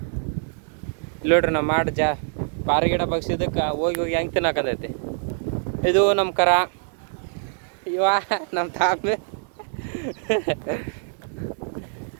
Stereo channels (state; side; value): silent; left; digital silence